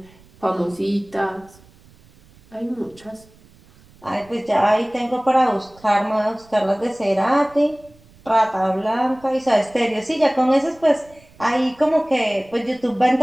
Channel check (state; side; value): noise; right; rumble, 27 dB below the sound